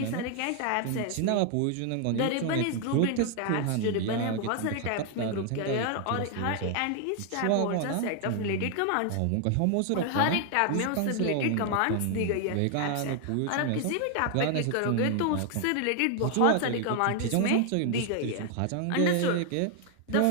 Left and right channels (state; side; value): different; both; correlation 0.00